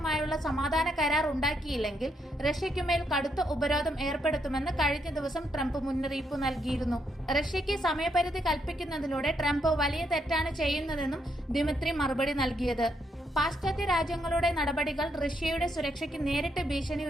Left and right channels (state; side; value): normal; both; correlation 0.77